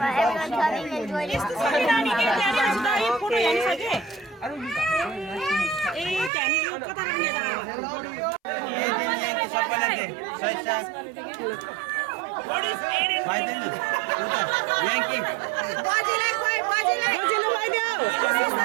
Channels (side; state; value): left; drops out; at 6.3 s